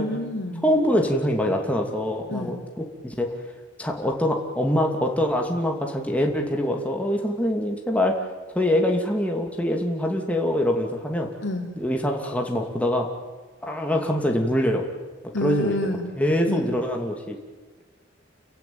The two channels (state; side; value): normal; both; correlation 0.67